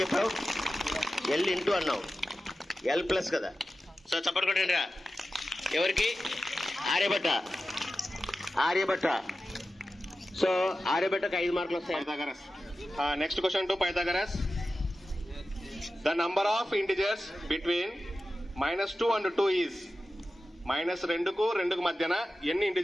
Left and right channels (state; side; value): normal; both; correlation 0.93